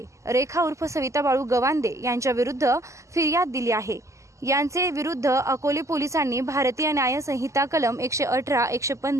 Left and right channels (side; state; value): left; late; 0.15 ms